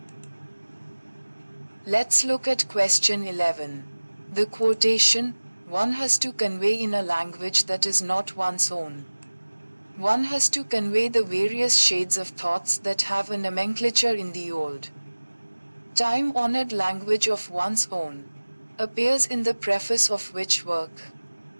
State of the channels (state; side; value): inverted; both; correlation -1.00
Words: Let's look at question 11. The quotation, one has to convey in a language that is not one's own. One has to convey the various shades of thoughts that have a nomenclature in the old, time-honored language of one's own, appears in the preface of which work?